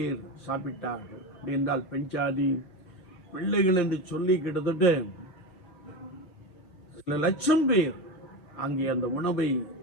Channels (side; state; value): right; late; 5.8 ms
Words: சாப்பிட்டார்கள். அப்படி என்றால் பெண் ஜாதி பிள்ளைகள் என்று சொல்லி கிட்டத்தட்ட சில லட்சம் பேர் அங்கே அந்த உணவை